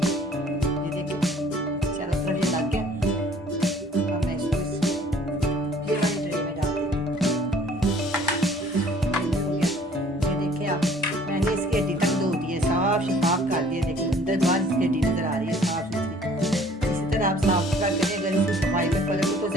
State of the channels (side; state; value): both; normal; correlation 0.55